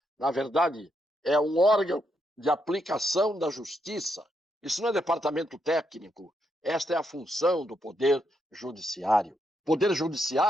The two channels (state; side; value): normal; both; correlation 0.79